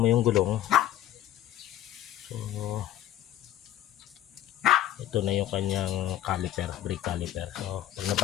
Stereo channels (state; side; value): quieter; right; 12.5 dB